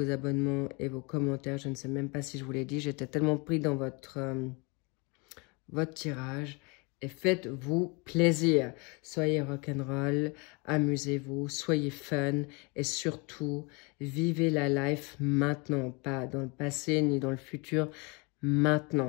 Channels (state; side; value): quieter; right; 30.3 dB